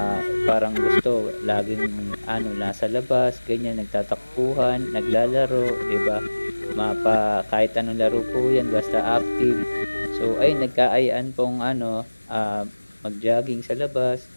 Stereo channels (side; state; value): both; inverted; correlation -1.00